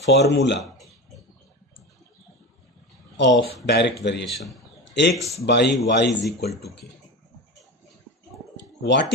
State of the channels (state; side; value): normal; both; correlation 0.26